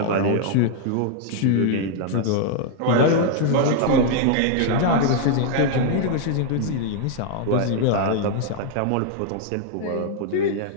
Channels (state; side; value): different; both; correlation 0.00